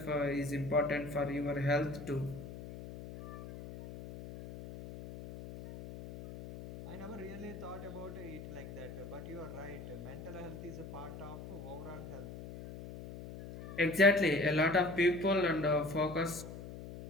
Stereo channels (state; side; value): noise; left; hum, 11 dB below the sound